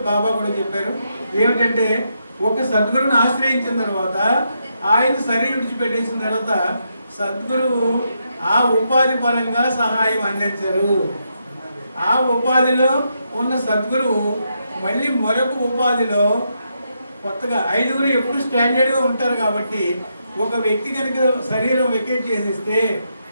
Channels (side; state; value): both; inverted; correlation -0.81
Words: బాబా కూడా చెప్పారు ఏమిటంటే, ఒక సద్గురుని ఆశ్రయించిన తర్వాత ఆయన శరీరం విడిచిపెట్టేసిన తర్వాత సద్గురువు ఆ ఉపాధి పరంగా సహాయం అందించరు. ఆ ఉపాధిలో ఉన్న సద్గురువు మళ్ళీ మరొక ఉపాధిలో కొత్తగా 5 ఎప్పుడు స్టాండర్డ్గా ఉంటారు కాబట్టి ఒక వ్యక్తి కనుక శరీరం వెకేట్ చేసేస్తే